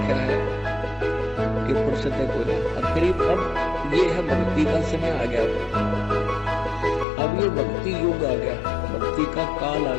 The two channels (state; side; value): drops out; right; at 7.1 s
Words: है कि फुर्सत को नहीं। और फिर अब ये है भक्ति का समय आ गया, अब ये भक्ति युग आ गया, भक्ति का काल आ